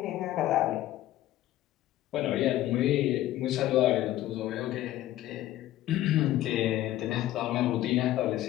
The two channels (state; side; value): quieter; right; 14.3 dB